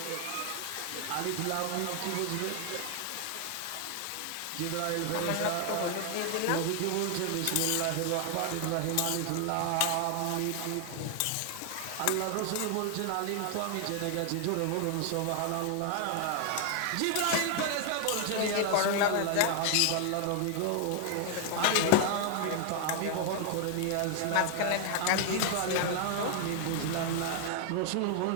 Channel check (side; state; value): both; different; correlation 0.00